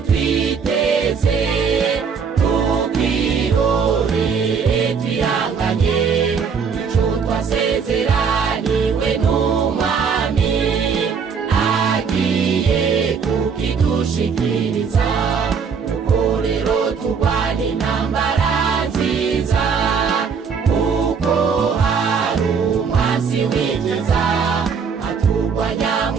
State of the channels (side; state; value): left; quieter; 6.0 dB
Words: twiteze, tukirorere twihanganye ico twasezeraniwe n'umwami agiye kukidushikiriza. Kuko rero turwana intambara nziza, kuko hari umwansi w'ikiza aturwanya